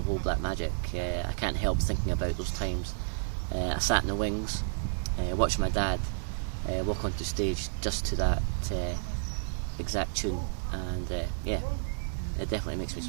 Old Black Magic, I can't help thinking about those times. I sat in the wings watching my dad walk onto stage just to that exact tune, and yeah, it definitely makes me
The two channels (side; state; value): left; silent; digital silence